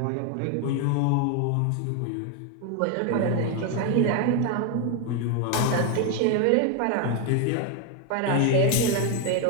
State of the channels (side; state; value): both; different; correlation 0.01